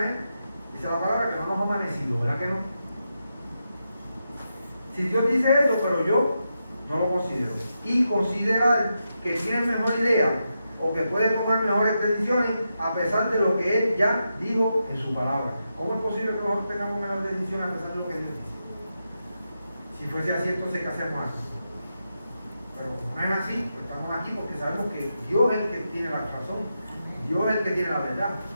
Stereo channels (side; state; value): both; inverted; correlation -0.86